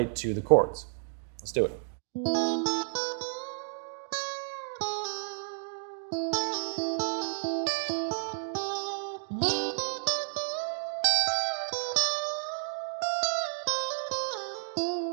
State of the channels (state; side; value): silent; left; digital silence